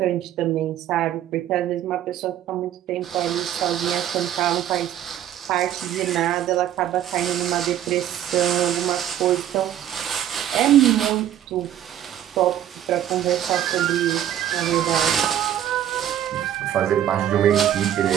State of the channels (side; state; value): left; quieter; 11.2 dB